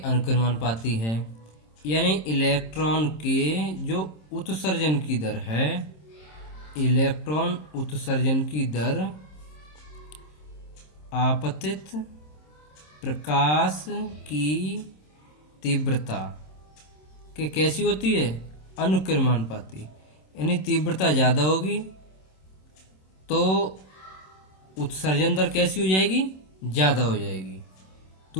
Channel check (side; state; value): right; late; 26 ms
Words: अनुक्रमानुपाती है। यानी इलेक्ट्रॉन के जो उत्सर्जन की दर है, इलेक्ट्रॉन उत्सर्जन की दर आपतित प्रकाश की तीव्रता के कैसी होती है, अनुक्रमानुपाती। यानी तीव्रता ज़्यादा होगी तो उत्सर्जन दर कैसी हो जाएगी, ज़्यादा हो जाएगी।